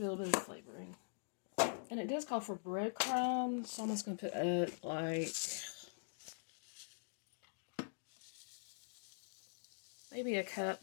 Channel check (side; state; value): right; silent; digital silence